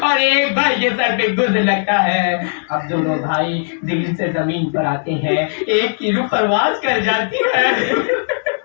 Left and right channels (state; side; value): silent; right; digital silence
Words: ایک بھائی کے سر پہ گرز لگتا ہے. اب دونوں بھائی دل سے زمین پر آتے ہیں ایک کی روح پرواز کر جاتی ہے